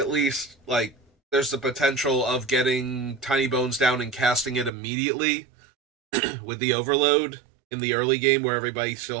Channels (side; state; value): left; drops out; at 4.7 s